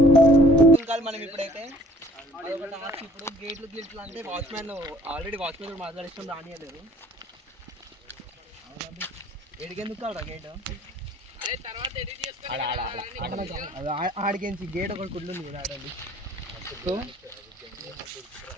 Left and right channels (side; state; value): both; normal; correlation 0.56